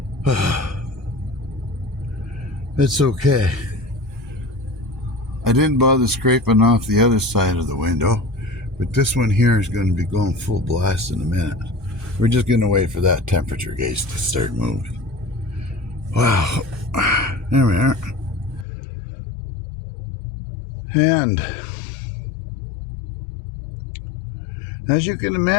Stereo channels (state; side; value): drops out; right; at 18.7 s